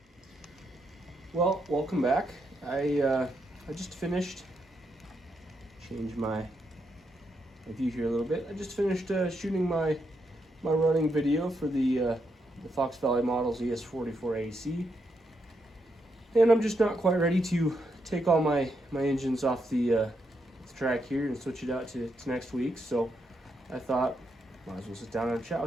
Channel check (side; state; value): both; normal; correlation 0.80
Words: Well, welcome back. I just finished, change my view here a little bit. I just finished shooting my running video for the Fox Valley Models ES44AC. And I'm just not quite ready to take all my engines off the track here and switch it out to next week. So I thought, might as well sit down and chat